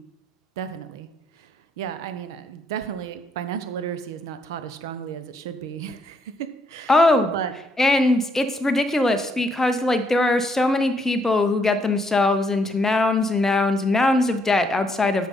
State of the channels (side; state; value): both; normal; correlation 0.73